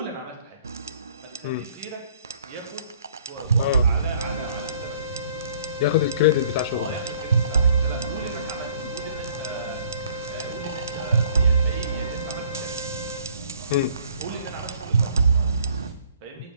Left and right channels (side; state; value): both; inverted; correlation -0.58